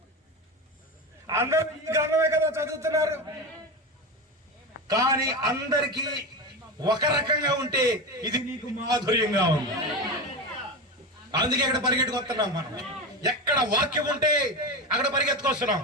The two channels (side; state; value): both; normal; correlation 0.21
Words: అందరూ ఈ గ్రంథమే కదా చదువుతున్నారు. కానీ అందరికీ ఒక రకంగా ఉంటే ఇది నీకు మాధుర్యంగా ఉంది. అందుకే ఇక్కడ పరిగెట్టుకొస్తున్నాం మనం. ఎక్కడ వాక్యం ఉంటే అక్కడ పరిగెత్తుకొస్తున్నాం.